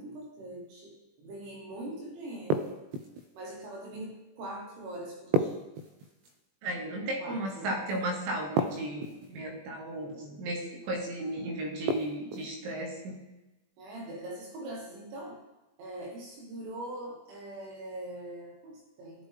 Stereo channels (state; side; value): late; left; 21 ms